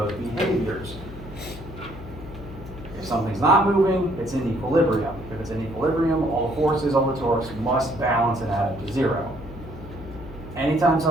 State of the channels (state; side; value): noise; left; hum, 14 dB below the sound